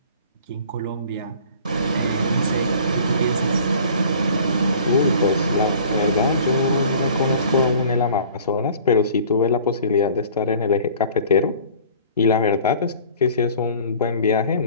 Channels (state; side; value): inverted; both; correlation -0.48